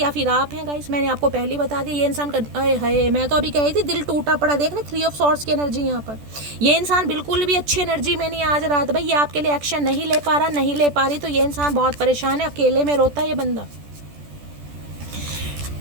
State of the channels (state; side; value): late; left; 14 ms